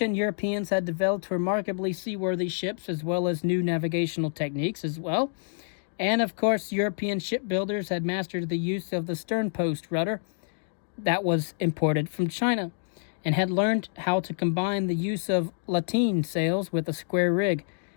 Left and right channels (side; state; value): right; silent; 60 dB below the other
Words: Europeans had developed remarkably seaworthy ships as well as new navigational techniques as well. And of course, European shipbuilders had mastered the use of the sternpost rudder that was imported from China and had learned how to combine the use of lateen sails with a square rig.